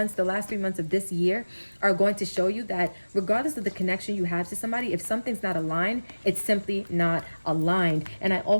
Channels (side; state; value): both; inverted; correlation -1.00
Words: the last 3 months of this year are going to show you that regardless of the connection you have to somebody, if something's not aligned, it's simply not aligned. And I